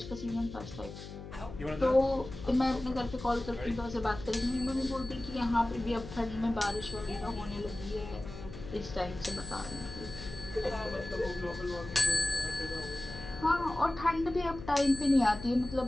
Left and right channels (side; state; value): left; noise; hum, 12 dB below the sound